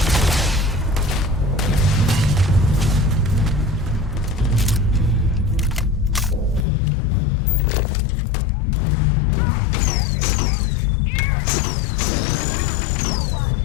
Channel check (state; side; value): drops out; right; at 6.7 s